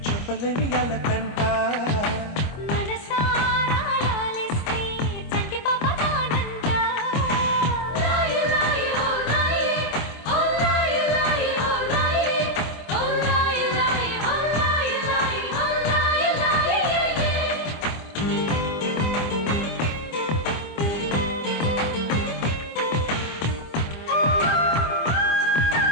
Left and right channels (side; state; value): right; late; 25 ms